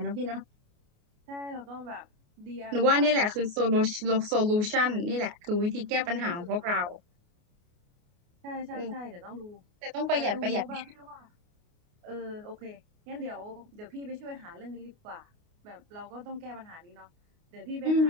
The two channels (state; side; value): late; left; 29 ms